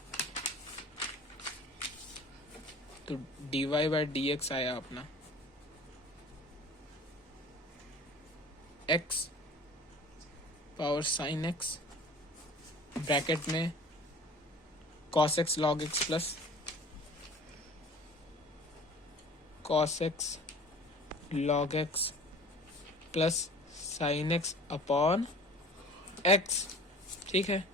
तो dy बाई dx आया अपना x power sine x bracket में cos x log x plus cos x log x plus sine x upon x, ठीक है,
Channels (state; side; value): normal; both; correlation 0.45